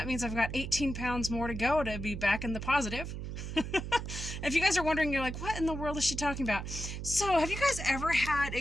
means I've got 18 pounds more to go to be back in the positive. If you guys are wondering, you're like, what in the world is she talking about? So, have you guys ever had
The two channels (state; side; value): noise; right; hum, 6 dB below the sound